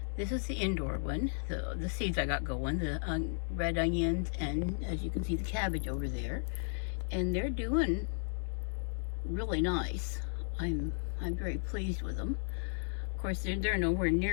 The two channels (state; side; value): silent; right; digital silence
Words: This is the indoor one, the seeds I got going, the red onions, and as you can see, the cabbage over there. And they're doing really nice. I'm very pleased with them. Of course, they're nowhere